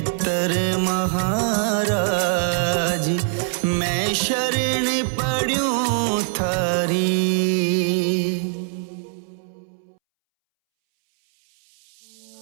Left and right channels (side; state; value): left; silent; 64 dB below the other